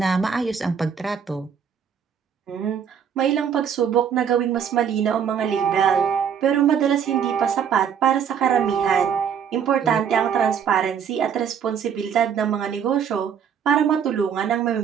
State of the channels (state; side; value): quieter; left; 7.8 dB